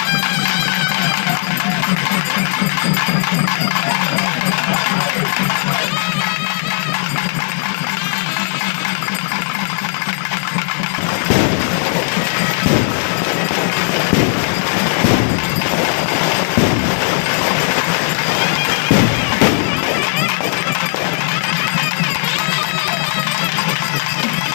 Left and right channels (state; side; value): silent; right; 59 dB below the other